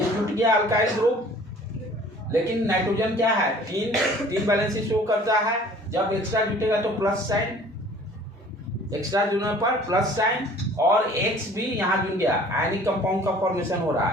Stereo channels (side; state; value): both; normal; correlation 0.50